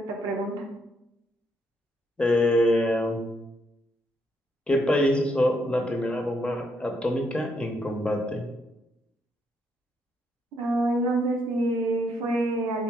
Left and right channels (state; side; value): normal; both; correlation 0.75